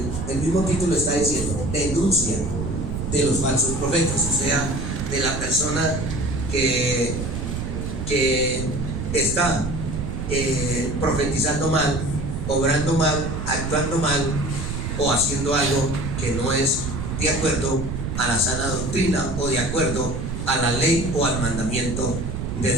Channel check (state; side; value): noise; right; rumble, 4 dB below the sound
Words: el mismo título está diciendo, denuncia de los falsos profetas, o sea, de la persona que está profetizando mal, obrando mal, actuando mal o haciendo algo que no es de acuerdo a la sana doctrina o de acuerdo a la ley o al mandamiento de